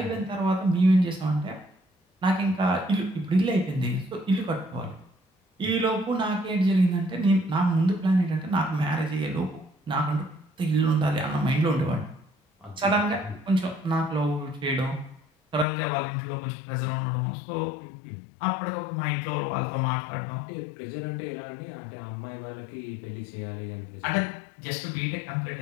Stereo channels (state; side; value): drops out; right; at 15.7 s